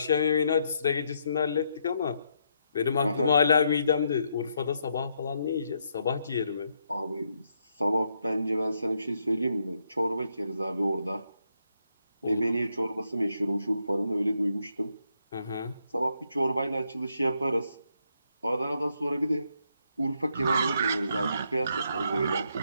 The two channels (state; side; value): inverted; both; correlation -0.77